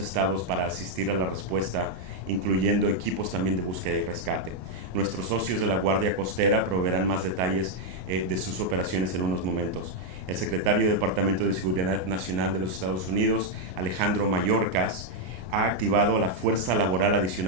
para asistir a la respuesta, incluyendo equipos también de búsqueda y rescate. Nuestros socios de la Guardia Costera proveerán más detalles de sus operaciones en unos momentos. El secretario del Departamento de Seguridad Nacional de los Estados Unidos, Alejandro Mayorkas, ha activado la fuerza laboral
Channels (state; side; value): late; left; 33 ms